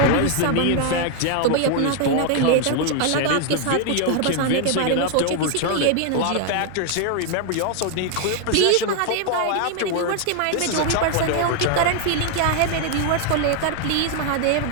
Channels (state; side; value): different; both; correlation 0.00